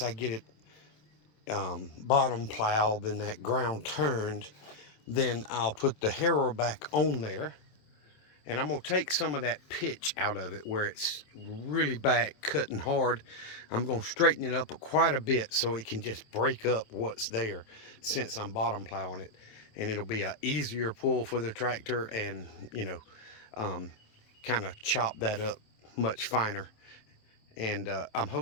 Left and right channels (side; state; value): right; late; 27 ms